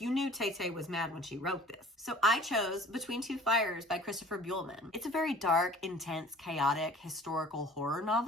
knew Tay-Tay was mad when she wrote this. So I chose Between Two Fires by Christopher Buehlman. It's a very dark, intense, chaotic, historical horror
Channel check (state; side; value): normal; both; correlation 0.47